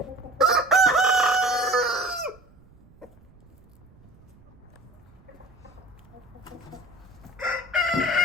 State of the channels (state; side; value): noise; right; rumble, 26 dB below the sound